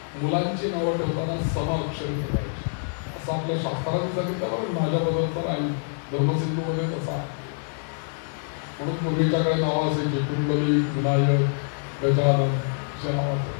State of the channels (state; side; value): silent; right; 61 dB below the other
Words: मुलांची नावं ठेवताना समाक्षरी ठेवायची. असं आपल्या शास्त्राने सांगितलं. माझ्याबद्दलचा नाही, धर्मसिंधूमध्ये तसा आहे. म्हणून पूर्वीच्याकडे नावं असायची कुंडली, विनायक, गजानन,